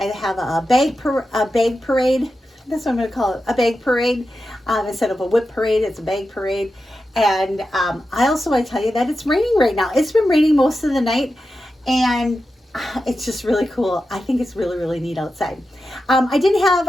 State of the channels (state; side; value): normal; both; correlation 0.91